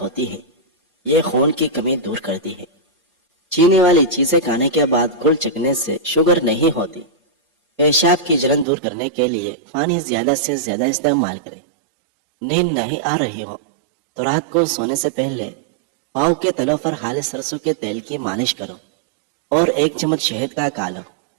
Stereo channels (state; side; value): drops out; left; at 8.7 s